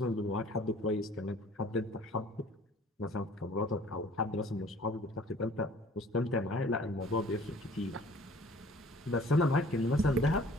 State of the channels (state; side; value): normal; both; correlation 0.52